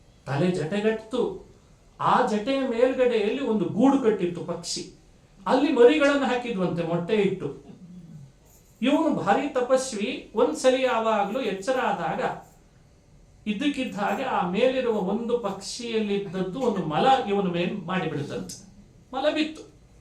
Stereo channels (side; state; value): both; identical; correlation 1.00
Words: ತಲೆ ಜಟೆಗಟ್ಟು. ಆ ಜಟೆಯ ಮೇಲ್ಗಡೆಯಲ್ಲಿ ಒಂದು ಗೂಡು ಕಟ್ಟಿತ್ತು ಪಕ್ಷಿ, ಅಲ್ಲಿ ಮರಿಗಳನ್ನು ಹಾಕಿದ್ವಂತೆ ಮೊಟ್ಟೆ ಇಟ್ಟು. ಇವನು ಭಾರಿ ತಪಸ್ವಿ. ಒಂದ್ಸಲಿ ಯಾವಾಗಲೂ ಎಚ್ಚರ ಆದಾಗ ಇದ್ದಕ್ಕಿದ್ದ ಹಾಗೆ ಆ ಮೇಲಿರುವ ಒಂದು ಪಕ್ಷಿಯಲ್ಲಿದ್ದದ್ದು ಒಂದು ಮಲ ಇವನ ಮೇಲೆ ಮಾಡಿಬಿಡುತ್ತಂತೆ. ಮಲ ಬಿತ್ತು.